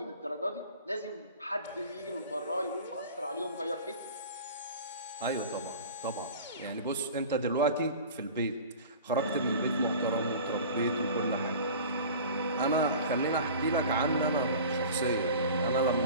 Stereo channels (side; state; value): both; inverted; correlation -0.39